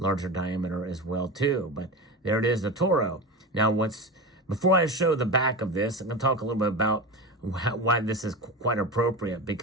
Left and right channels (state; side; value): normal; both; correlation 0.25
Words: diameter as well too. But there it is, the Toro. Now, before I show the back of this, I'm going to talk a little bit about why this is quite appropriate.